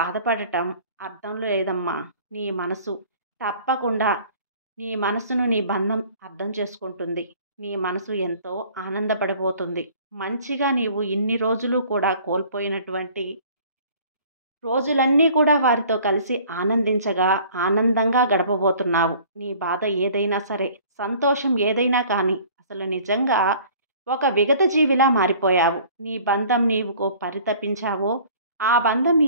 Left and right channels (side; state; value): both; inverted; correlation -0.51